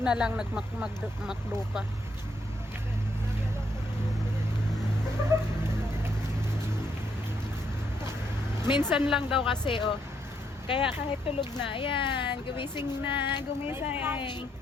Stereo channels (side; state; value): both; normal; correlation 0.75